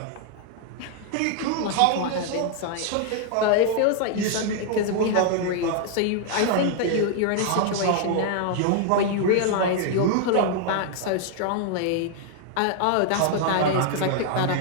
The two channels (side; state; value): both; different; correlation 0.00